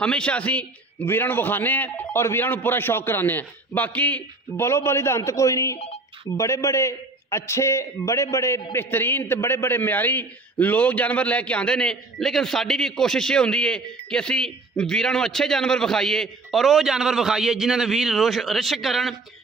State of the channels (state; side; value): quieter; left; 3.2 dB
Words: हमेशा असीं वीरां नूं विखाने हैं और वीरां नूं पूरा शौक कराने हैं। बाकी बलो बली दा अंत कोई नहीं। बड़े बड़े अच्छे, बड़े बड़े बेहतरीन ते बड़े बड़े म्यारी लोग जानवर लैके आते हैं। लेकिन साड़ी भी कोशिश ये होंदी है कि असी वीरां नूं अच्छे जानवर विखाइए और वो जानवर विखाइए जिन्हां दे वीर रिश्क करन,